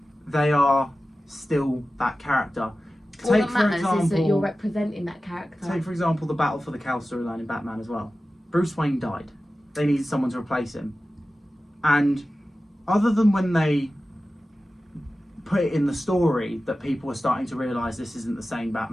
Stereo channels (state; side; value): normal; both; correlation 0.95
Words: They are still that character. All that matters is that you're representing that character. Take, for example, the Battle for the Cowl storyline in Batman as well. Bruce Wayne died. They needed someone to replace him. And other than when they put it in the story that people were starting to realise this isn't the same